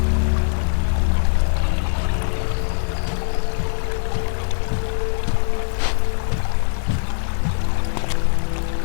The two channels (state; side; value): silent; right; digital silence